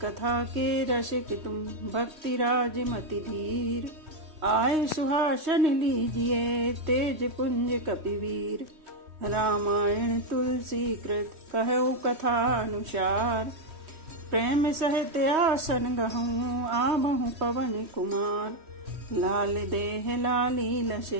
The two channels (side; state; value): left; late; 3.2 ms